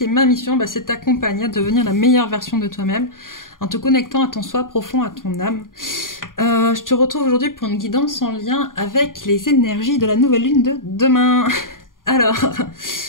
ma mission c'est de t'accompagner à devenir la meilleure version de toi-même en te connectant à ton soi profond, à ton âme. Je te retrouve aujourd'hui pour une guidance en lien avec les énergies de la nouvelle lune de demain. Alors,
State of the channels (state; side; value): late; right; 0.90 ms